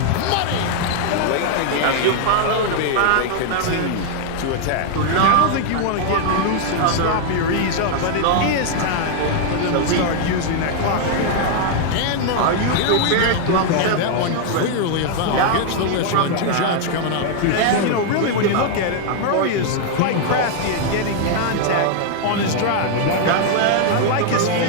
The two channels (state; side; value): different; both; correlation 0.00